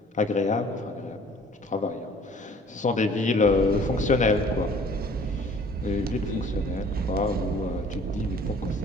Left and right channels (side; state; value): both; normal; correlation 0.53